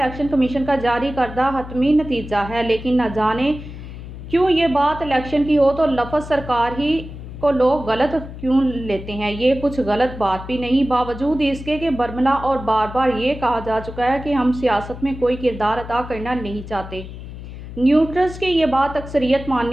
कमीशन का जारी करदा हतमी नतीजा है, लेकिन न जाने क्यों ये बात इलेक्शन की हो तो लफ्ज़ सरकार ही को लोग गलत क्यों लेते हैं। ये कुछ गलत बात भी नहीं, बावजूद इसके कि बरमला और बार बार ये कहा जा चुका है कि हम सियासत में कोई किरदार अदा करना नहीं चाहते। न्यूट्रल्स की ये बात अक्सरियत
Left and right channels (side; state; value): left; noise; hum, 12 dB below the sound